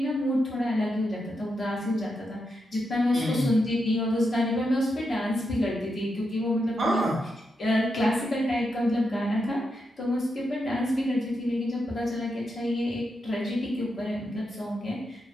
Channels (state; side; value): normal; both; correlation 0.85